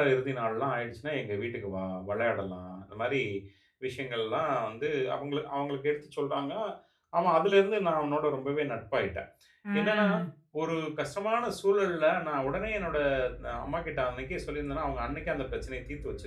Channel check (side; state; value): both; identical; correlation 1.00